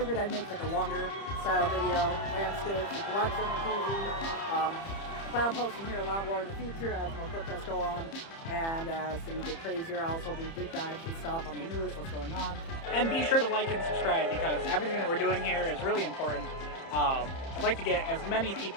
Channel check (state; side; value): late; right; 30 ms